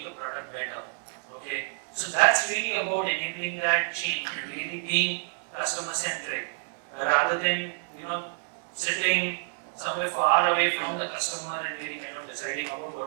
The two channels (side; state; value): left; silent; digital silence